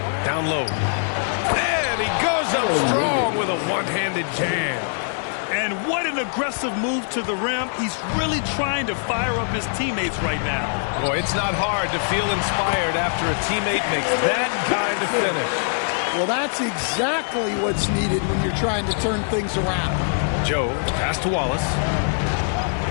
Down low. And he goes up strong with a one-handed jam. And what an aggressive move to the rim. He's really trying to fire up his teammates right now. Boy, it's not hard to feel inspired after a teammate makes that kind of finish. Well, that's exactly what's needed when you're trying to turn things around. Joe, the pass to Wallace.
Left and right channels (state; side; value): silent; right; digital silence